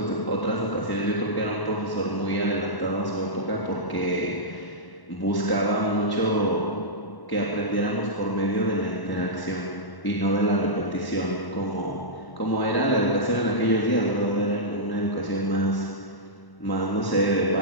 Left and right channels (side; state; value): right; late; 1.0 ms